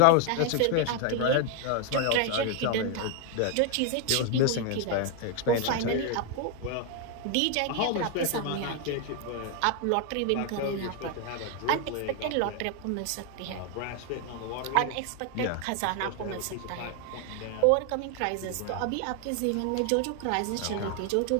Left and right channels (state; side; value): different; both; correlation 0.01